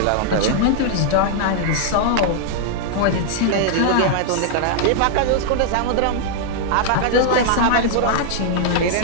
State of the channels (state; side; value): different; both; correlation -0.01